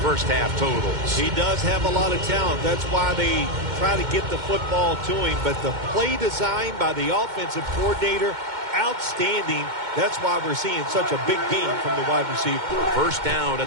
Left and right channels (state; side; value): late; left; 2.1 ms